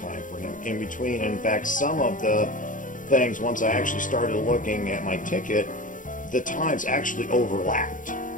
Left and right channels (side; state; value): right; late; 0.38 ms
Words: for him in between. And in fact, some of the things, once I actually started looking at my ticket, the times actually overlapped.